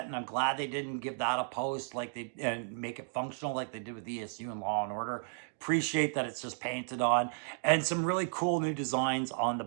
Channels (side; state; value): left; silent; digital silence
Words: and I'm glad they didn't give that a post like they and make it functional like they did with ESU and Law and Order. Appreciate that it's just painted on, and some really cool new designs on the